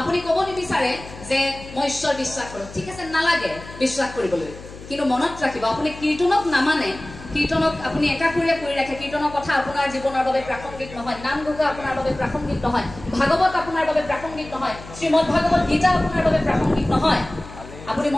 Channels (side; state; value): left; noise; hum, 16 dB below the sound